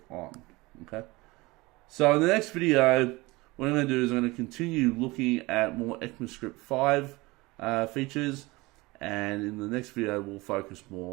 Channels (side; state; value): left; quieter; 22.4 dB